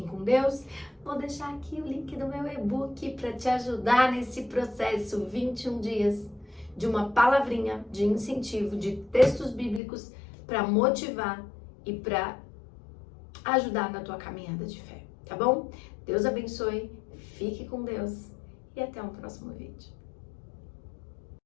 com Deus. Vou deixar aqui o link do meu e-book para te ajudar nesse processo. 21 dias de uma palavrinha de incentivo, de textos bíblicos para motivar e para ajudar na tua caminhada de fé. Tá bom? Deus abençoe. Fique com Deus. E até um próximo vídeo.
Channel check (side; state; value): right; drops out; at 9.8 s